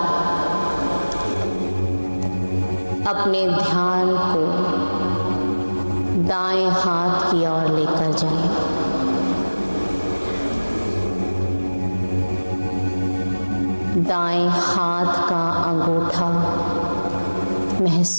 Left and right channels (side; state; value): both; inverted; correlation -1.00